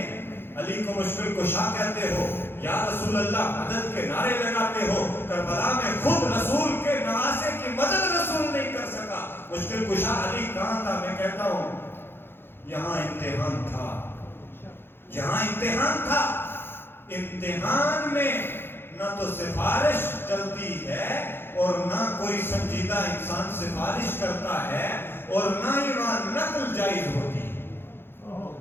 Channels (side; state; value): right; late; 0.11 ms